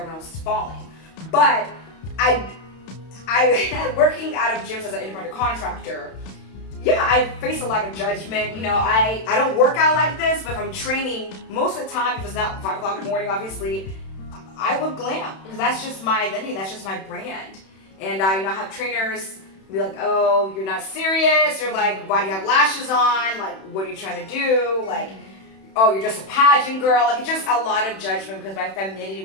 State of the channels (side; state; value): right; late; 31 ms